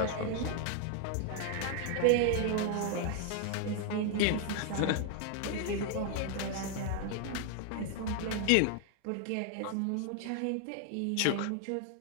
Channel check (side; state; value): both; different; correlation 0.00